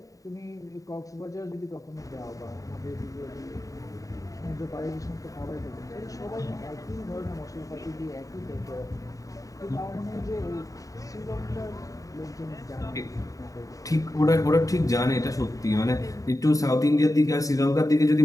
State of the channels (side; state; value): right; late; 0.16 ms